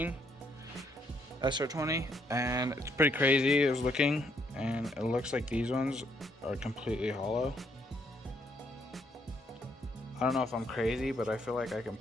SR20, and it's pretty crazy. I was looking, and it looks like these ones are completely hollow. I don't know if I'm crazy, but I feel like I can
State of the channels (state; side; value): normal; both; correlation 0.72